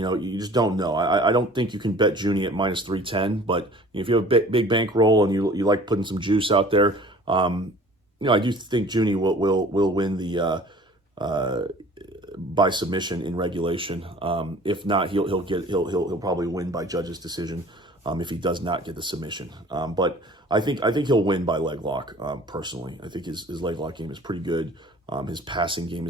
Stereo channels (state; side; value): normal; both; correlation 0.48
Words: just don't know. I don't think you can bet Junny at minus 310. But if you have a big bankroll and you like putting some juice out there, I do think Junny will win the by submission in regulation. If not, he'll probably win by judge's decision if he does not get the submission. But I think he'll win by leg lock. Personally, I think his leg lock game is pretty good. His passing game